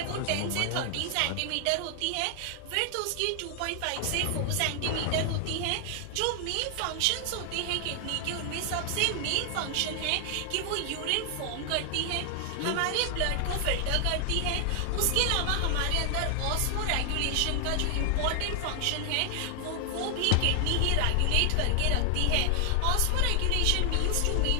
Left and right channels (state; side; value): different; both; correlation 0.00